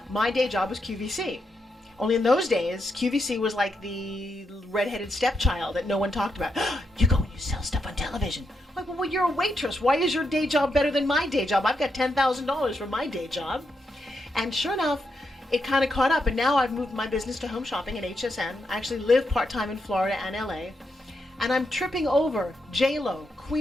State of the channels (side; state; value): both; normal; correlation 0.82